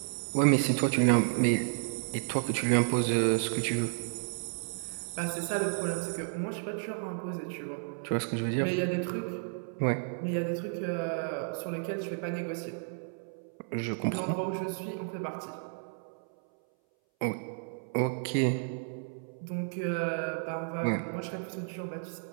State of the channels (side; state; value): left; silent; 56 dB below the other